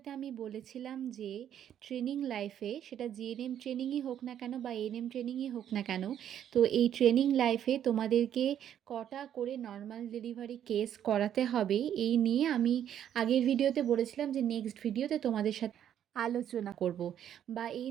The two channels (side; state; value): left; quieter; 10.0 dB